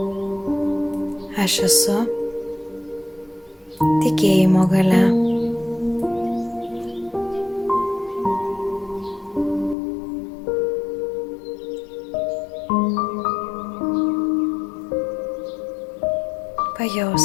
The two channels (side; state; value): right; drops out; at 9.8 s